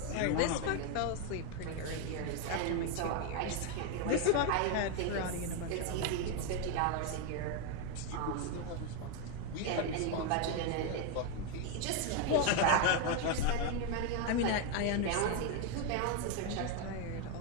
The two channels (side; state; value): both; different; correlation 0.02